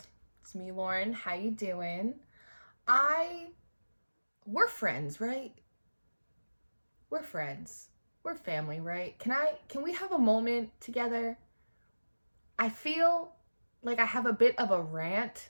it's me, Lauren. How you doing? We're friends, right? We're friends. We're family, right? Can we have a moment together? I feel like I have a bit of a rant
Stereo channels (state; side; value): inverted; both; correlation -1.00